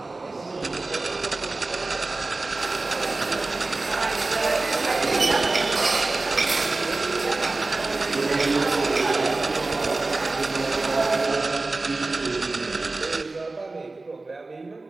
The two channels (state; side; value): quieter; left; 3.3 dB